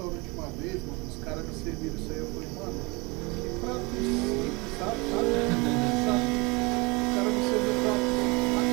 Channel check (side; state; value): left; quieter; 26.7 dB